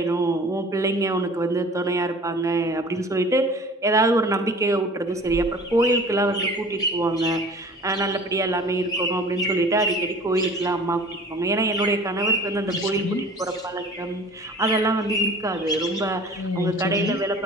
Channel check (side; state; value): both; normal; correlation 0.45